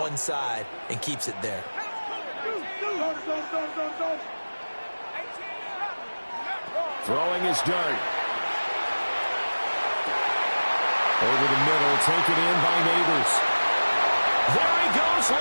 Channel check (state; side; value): inverted; both; correlation -1.00